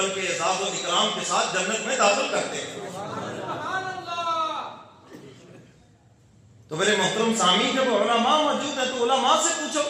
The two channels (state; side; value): identical; both; correlation 1.00